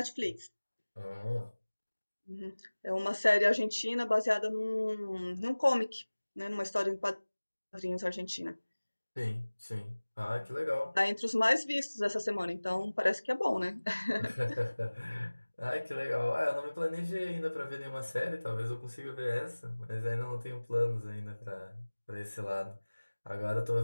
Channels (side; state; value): both; inverted; correlation -1.00